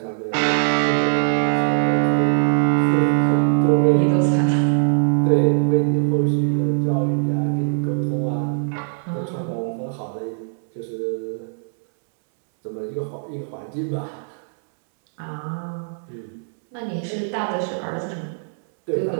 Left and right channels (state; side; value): silent; left; 65 dB below the other